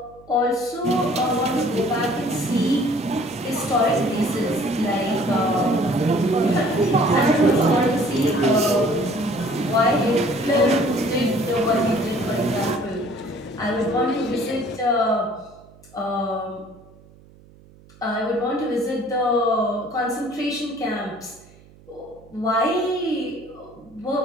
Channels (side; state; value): right; noise; hum, 25 dB below the sound